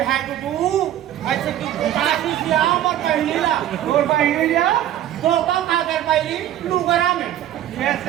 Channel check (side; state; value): left; quieter; 12.1 dB